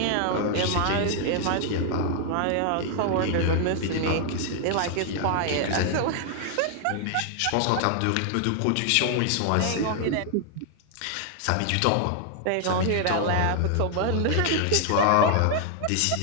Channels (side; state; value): both; different; correlation 0.00